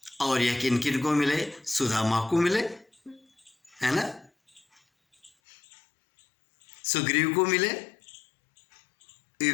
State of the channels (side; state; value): right; drops out; at 5.3 s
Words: और यह किन किन को मिले? सुदामा को मिले, है ना, सुग्रीव को मिले,